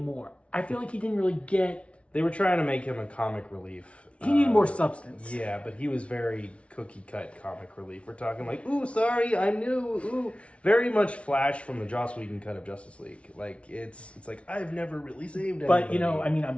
I feel like he didn't really get... They were trying to make him a comic relief. He needed more substance. Yeah, but he was very cookie-cut comic relief. We're talking like, ooh, sorry, I knew, ooh. Very much Flash from the Joss Whedon cut of Justice League. Like, it's like, I've never really saved anybody. But, you know, I mean,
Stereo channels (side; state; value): right; late; 0.062 ms